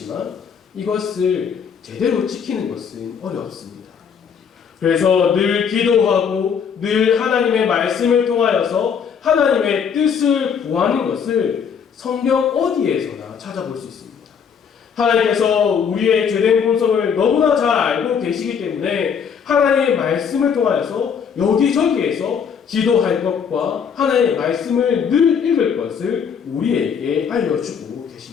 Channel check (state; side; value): quieter; right; 7.0 dB